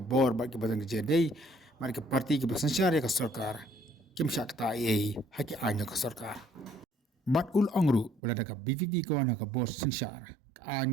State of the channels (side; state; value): left; drops out; at 8.2 s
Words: ba ke badan ke jedai mari ke parti ke bersensyar ke sarkar kim syakta ai haki anya ke sarkar. Bat ul angru belada ka BVP kawana ka bos sensyar